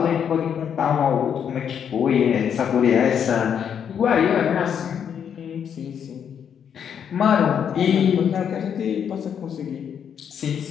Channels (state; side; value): quieter; right; 8.1 dB